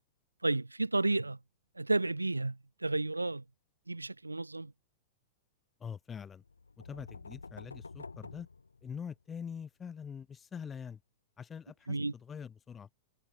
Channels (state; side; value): inverted; both; correlation -0.83